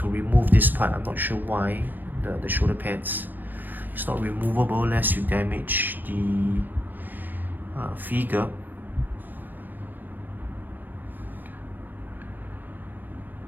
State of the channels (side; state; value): left; late; 0.087 ms